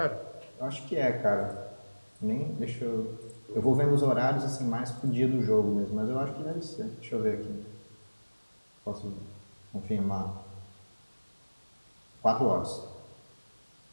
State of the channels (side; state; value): both; inverted; correlation -1.00